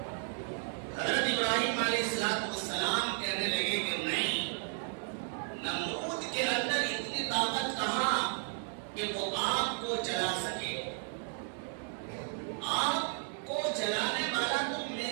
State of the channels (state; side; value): silent; left; 55 dB below the other